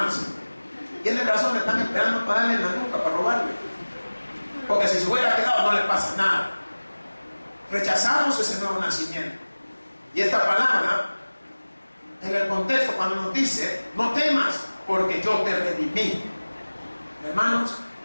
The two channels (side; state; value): both; inverted; correlation -1.00